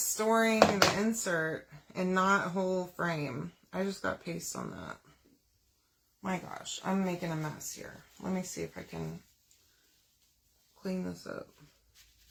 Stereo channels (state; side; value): identical; both; correlation 1.00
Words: storing the insert and not a whole frame. I just got paste on that. My gosh, I'm making a mess here. Let me see if I can clean this up.